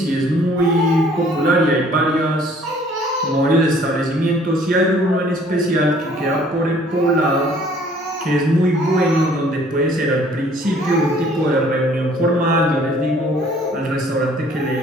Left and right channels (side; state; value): both; normal; correlation 0.57